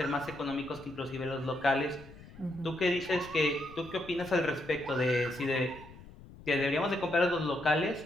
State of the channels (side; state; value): left; noise; rumble, 19 dB below the sound